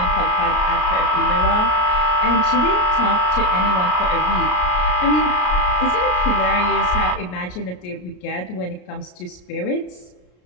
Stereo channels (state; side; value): late; right; 33 ms